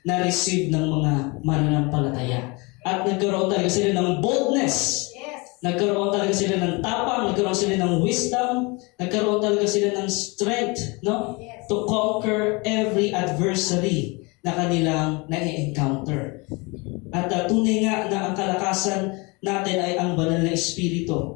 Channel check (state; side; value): quieter; right; 27.5 dB